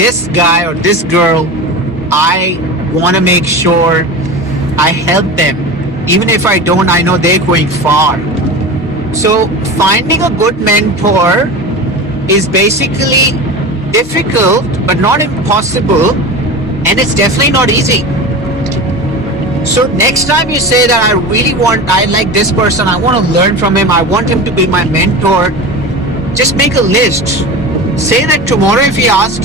guy or this girl, I want to make sure I help them. Even if I don't, I know they're going far. So finding a good mentor is basically difficult but not impossible, and it's definitely not easy. So next time you say that I like this person, I want to learn from him, I want him to be my mentor, just make a list. Say that tomorrow if he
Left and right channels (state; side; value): normal; both; correlation 0.29